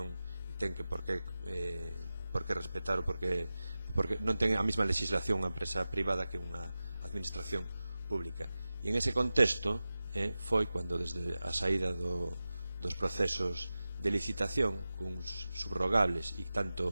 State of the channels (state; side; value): inverted; both; correlation -0.95